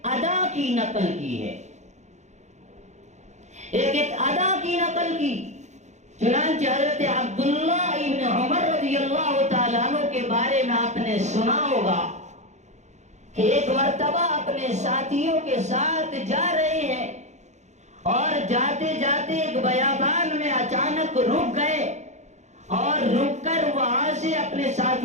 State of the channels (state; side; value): late; left; 0.33 ms